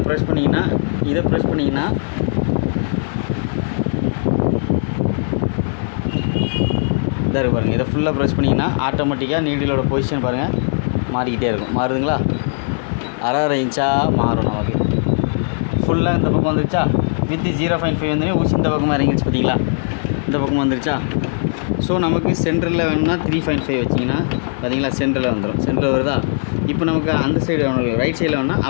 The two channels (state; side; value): silent; right; digital silence